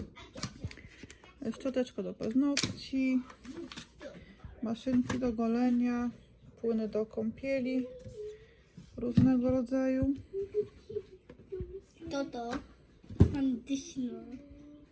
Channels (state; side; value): identical; both; correlation 1.00